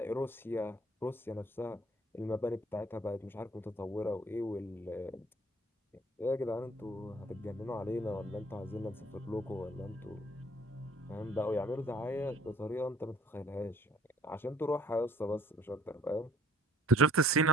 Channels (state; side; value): normal; both; correlation 0.55